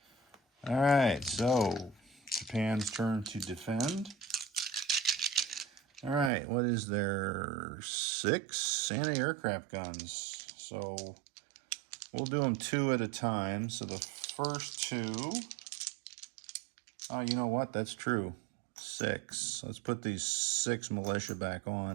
All right, so Japan's turn to defend. All right, what is there? 6 anti-aircraft guns. So we'll do them 2 at a time. So the first 2, oh, you know what? That's true. 6. Let's put these 6 militia back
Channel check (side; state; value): left; drops out; at 6.3 s